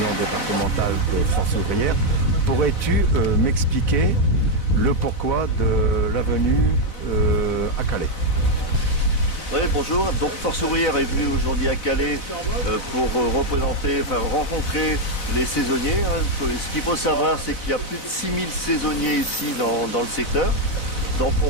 départementale de Force ouvrière. Pourrais-tu m'expliquer le pourquoi de la venue à Calais? Oui, bonjour. Donc Force ouvrière est venue aujourd'hui à Calais pour rencontrer les saisonniers. Ce qu'il faut savoir, c'est qu'il y a plus de 6000 saisonniers ici dans le secteur. Donc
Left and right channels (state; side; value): late; right; 4.0 ms